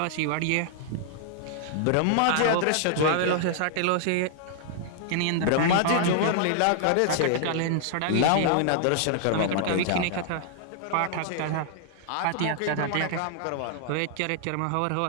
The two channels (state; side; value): different; both; correlation -0.01